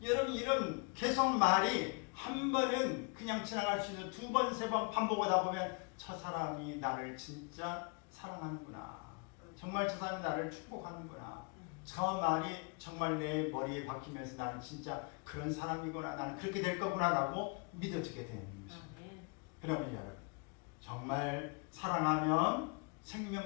여러분 이런 계속 말이 한 번은 그냥 지나갈 수 있는 두 번, 세 번 반복하다 보면 저 사람이 나를 진짜 사랑하는구나. 정말 저 사람이 나를 축복하는구나. 저 말이 정말 내 머리에 박히면서 나는 진짜 그런 사람이구나. 나는 그렇게 될 거구나 라고 믿어지게 되는 것입니다. 그러면 여러분 정말 사랑하면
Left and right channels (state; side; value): quieter; right; 34.1 dB